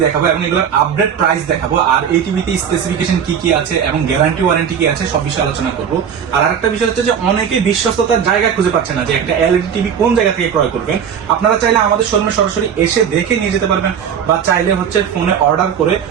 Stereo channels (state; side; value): quieter; left; 7.9 dB